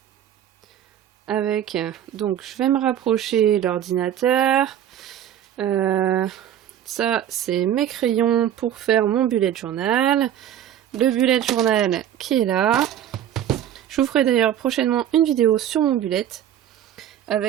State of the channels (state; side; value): quieter; left; 10.6 dB